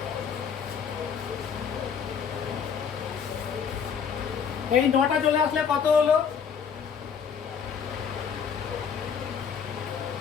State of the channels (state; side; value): quieter; right; 7.0 dB